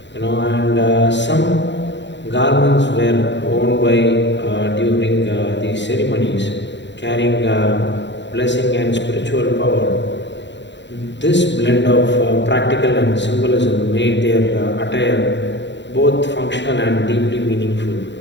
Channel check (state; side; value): late; right; 0.52 ms